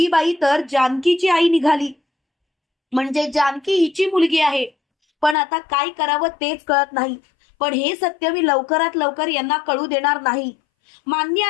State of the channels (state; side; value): drops out; right; at 5.4 s